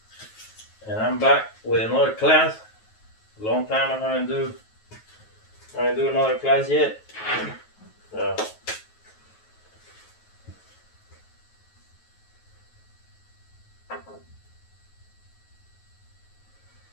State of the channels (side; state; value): right; late; 9.3 ms